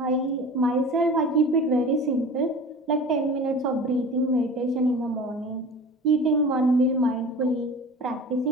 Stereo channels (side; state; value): both; normal; correlation 0.38